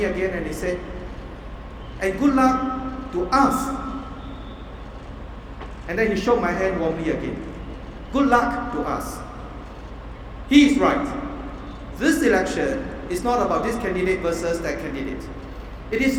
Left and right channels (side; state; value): both; identical; correlation 1.00